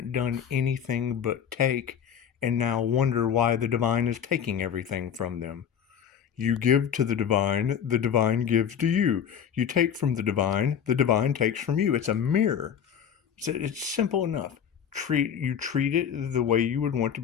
done anything but take, and now wonder why the divine is taking everything from them. You give to the divine gives to you. You take from the divine takes from you. It's a mirror. It's simple enough. You treat it the way you would want to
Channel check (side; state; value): right; quieter; 8.3 dB